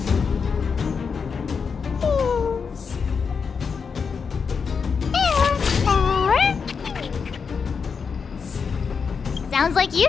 Sounds like you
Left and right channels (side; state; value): right; quieter; 5.8 dB